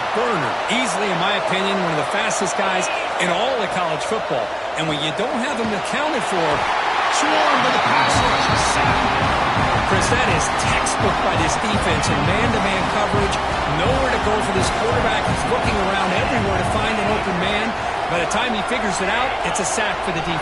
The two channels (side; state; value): both; identical; correlation 1.00